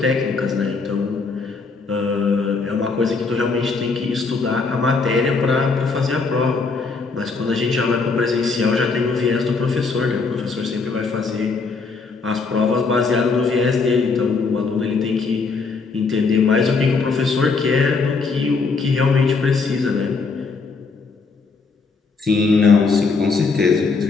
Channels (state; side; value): quieter; right; 4.5 dB